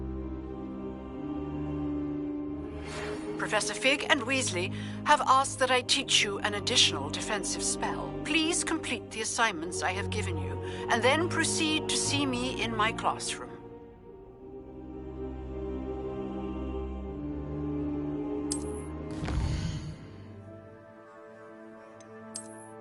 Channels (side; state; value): both; identical; correlation 1.00